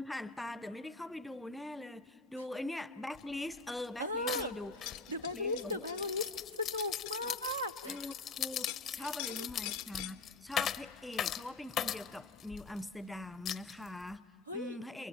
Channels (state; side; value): quieter; right; 3.8 dB